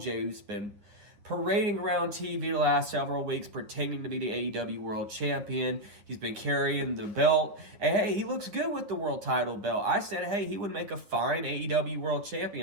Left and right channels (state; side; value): late; left; 9.8 ms